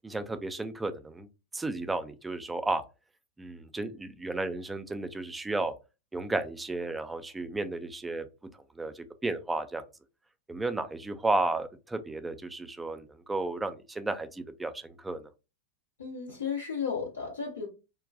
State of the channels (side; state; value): both; normal; correlation 0.74